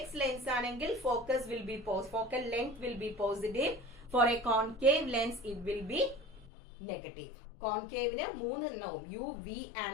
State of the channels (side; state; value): right; drops out; at 6.5 s